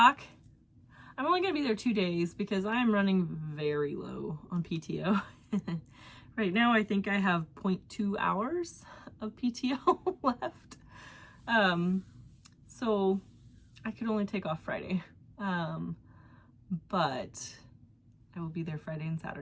I'm only gonna be there 2 days because I am running very low on PTO. Right now, I think I have 0.2 hours of PTO left. So I could only take off Friday. But I will be there Friday and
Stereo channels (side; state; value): both; identical; correlation 1.00